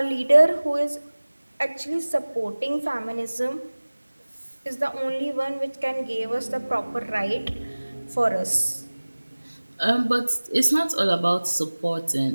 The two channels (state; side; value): inverted; both; correlation -1.00